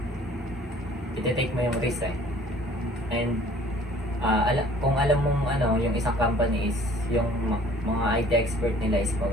iti-take mo yung risk eh. And kung alam mong yung isang company is yung mga IT expert nila is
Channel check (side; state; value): both; normal; correlation 0.53